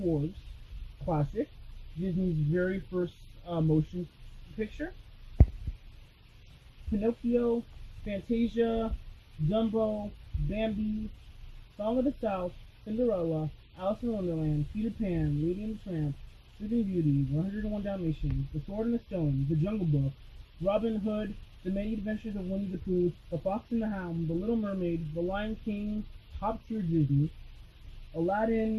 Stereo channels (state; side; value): identical; both; correlation 1.00